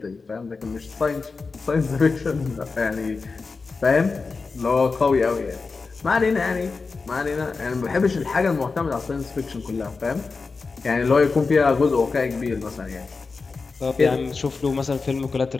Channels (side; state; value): right; quieter; 4.4 dB